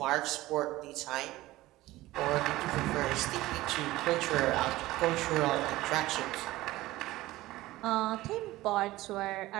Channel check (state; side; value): quieter; left; 17.5 dB